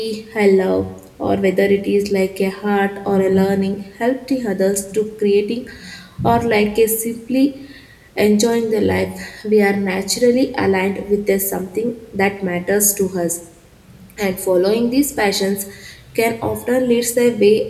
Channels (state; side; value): identical; both; correlation 1.00